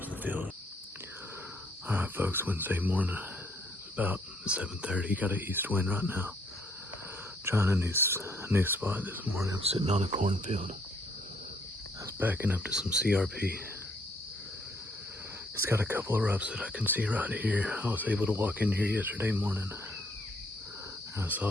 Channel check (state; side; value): normal; both; correlation 0.67